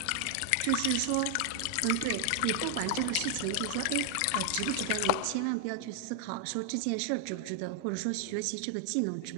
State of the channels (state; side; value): different; both; correlation 0.00